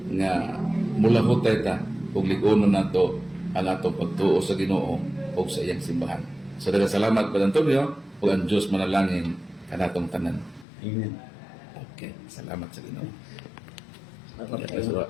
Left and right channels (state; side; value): drops out; right; at 10.7 s